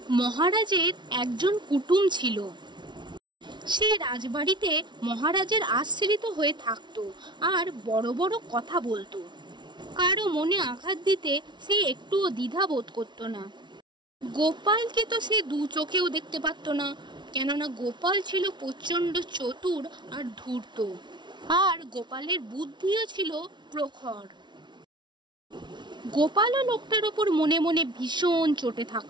মহারাজের একজন কুটুম ছিল। সে রাজবাড়িতে মহারাজের আশ্রিত হয়ে থাকতো আর বড় বড় কথা বলতো। কারো মনে আঘাত দিতে সে একটুও দ্বিধা বোধ করতো না। গোপালকে তো সে দু চোখেও দেখতে পারতো না, কেননা গোপাল ছিল প্রচণ্ড চতুর আর ধূর্ত, আর গোপালের বুদ্ধিও ছিল প্রখর। গোপালও লোকটার ওপর মনে মনে ভীষণ চটে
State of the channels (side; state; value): left; late; 0.22 ms